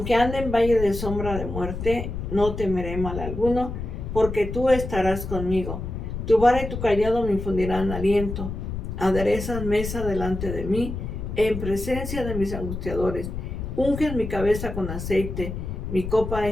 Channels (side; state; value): left; noise; rumble, 6 dB below the sound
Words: ande en valle de sombra de muerte, no temeré mal alguno, porque tú estarás conmigo. Tu vara y tu cayado me infundirán aliento. Aderezas mesa delante de mí, en presencia de mis angustiadores. Unges mi cabeza con aceite, mi copa